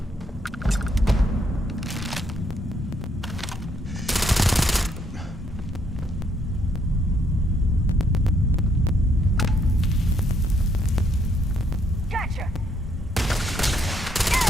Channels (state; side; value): normal; both; correlation 0.72